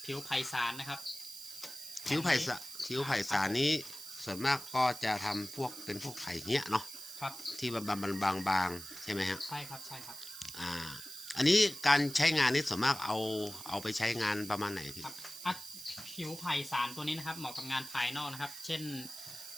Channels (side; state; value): right; noise; hiss, 12 dB below the sound